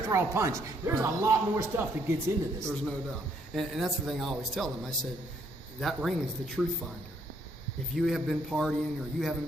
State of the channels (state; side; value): normal; both; correlation 0.70